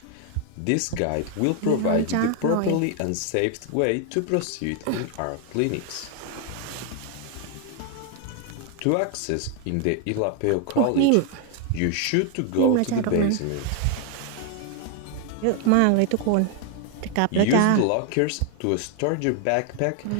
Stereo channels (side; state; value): both; different; correlation 0.00